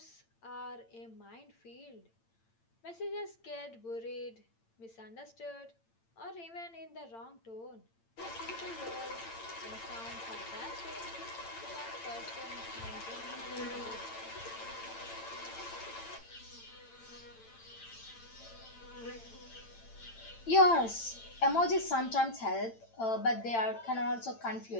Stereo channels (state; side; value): late; right; 8.9 ms